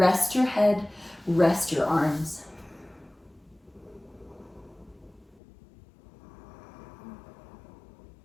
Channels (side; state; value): right; drops out; at 5.4 s